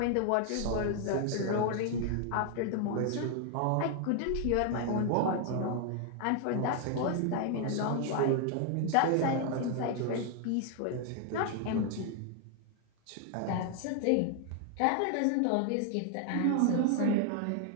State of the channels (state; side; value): different; both; correlation 0.00